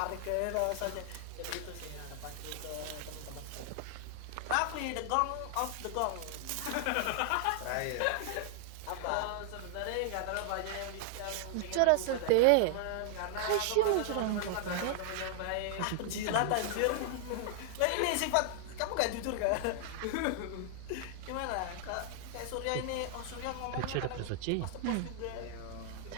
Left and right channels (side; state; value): both; different; correlation 0.00